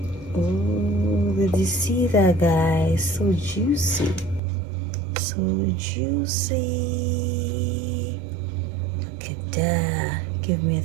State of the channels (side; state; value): left; drops out; at 4.4 s